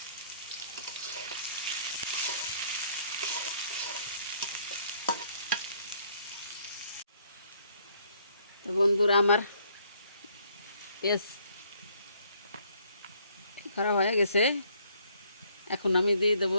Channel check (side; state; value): both; inverted; correlation -0.65